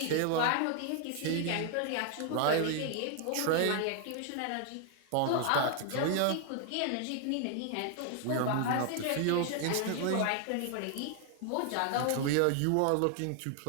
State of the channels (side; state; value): both; different; correlation 0.00